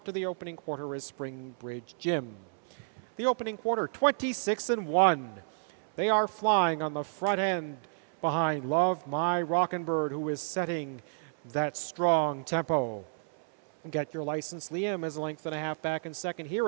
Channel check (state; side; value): silent; left; 57 dB below the other